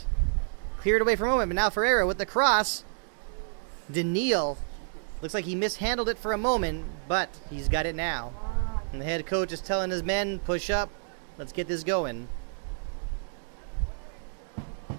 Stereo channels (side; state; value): left; silent; digital silence